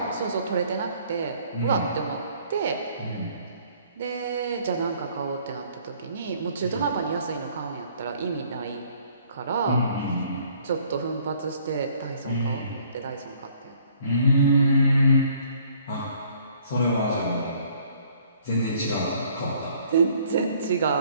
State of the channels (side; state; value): both; inverted; correlation -0.60